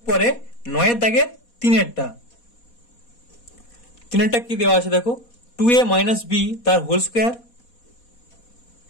পরে 9 দাগের 3 কি দেওয়া আছে দেখো, 2a মাইনাস b তার whole square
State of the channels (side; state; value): right; late; 4.2 ms